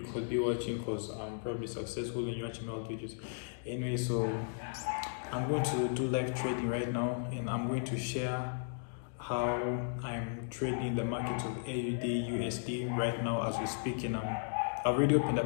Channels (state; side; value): silent; right; digital silence